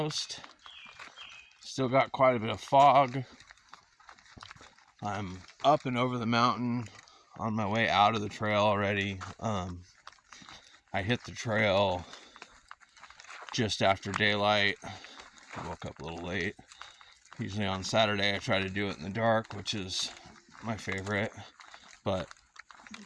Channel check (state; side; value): identical; both; correlation 1.00